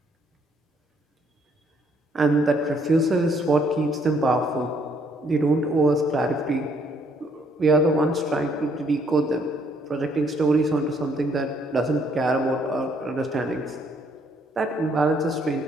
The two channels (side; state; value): both; normal; correlation 0.67